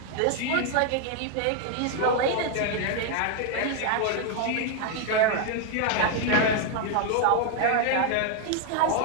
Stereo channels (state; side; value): different; both; correlation 0.00